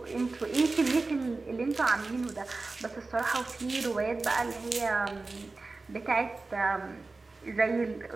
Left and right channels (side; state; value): left; quieter; 3.6 dB